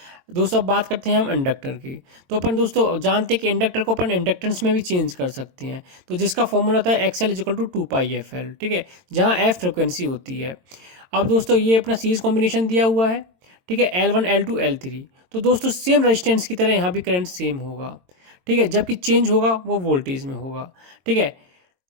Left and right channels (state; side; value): late; left; 22 ms